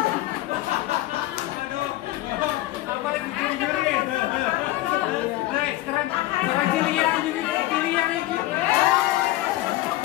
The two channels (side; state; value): right; quieter; 16.7 dB